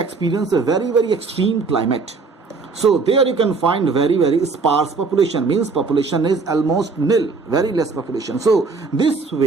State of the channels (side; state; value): left; quieter; 4.3 dB